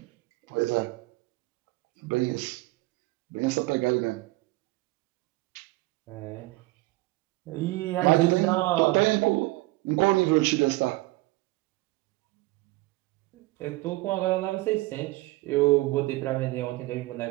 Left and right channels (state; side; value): quieter; left; 20.7 dB